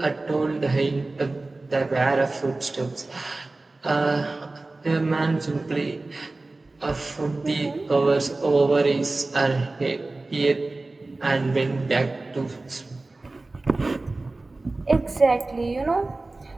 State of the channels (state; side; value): quieter; left; 3.2 dB